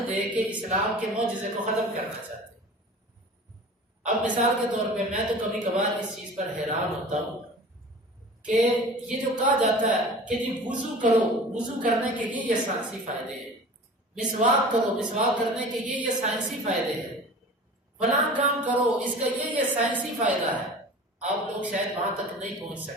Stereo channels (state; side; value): normal; both; correlation 0.39